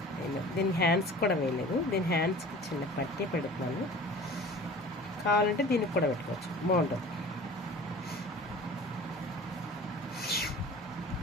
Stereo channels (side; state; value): both; normal; correlation 0.42